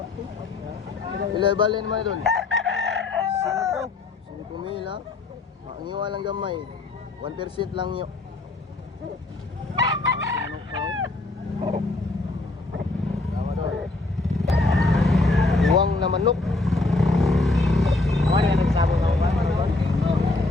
Ilay-balin naman Idol. 5 mil ha. Ang iwa lang gamay. 1% lang yun. Tama doon. Iwang na manok. Ano yan nagsabong ako ba?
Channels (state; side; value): quieter; right; 3.1 dB